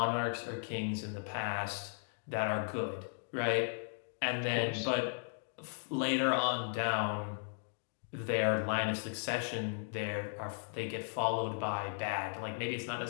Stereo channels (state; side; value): silent; right; digital silence